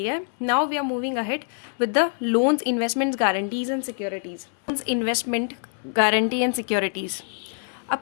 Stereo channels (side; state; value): right; silent; 62 dB below the other